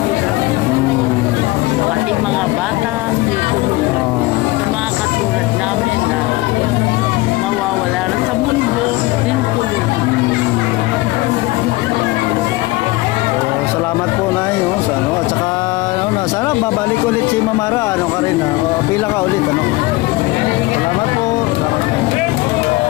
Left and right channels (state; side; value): quieter; right; 20.6 dB